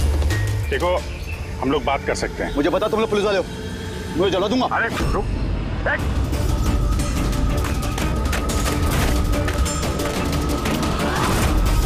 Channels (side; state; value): both; identical; correlation 1.00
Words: देखो, हम लोग बात कर सकते हैं। मुझे पता तुम लोग पुलिस वाले हो, मुझे जला दूंगा। अरे रुक,